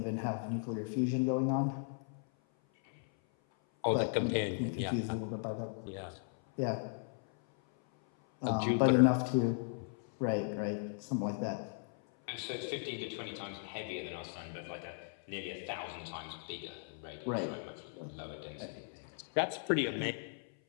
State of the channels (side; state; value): right; silent; 53 dB below the other